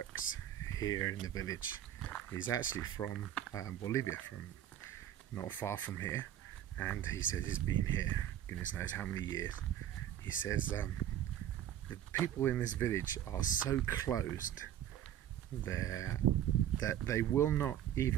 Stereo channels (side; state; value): left; quieter; 11.1 dB